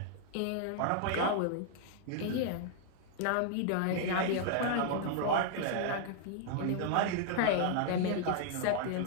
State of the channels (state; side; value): different; both; correlation -0.01